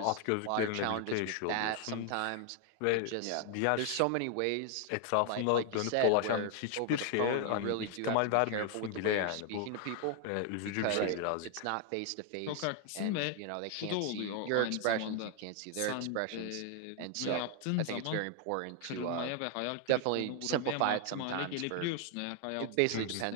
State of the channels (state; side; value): different; both; correlation 0.00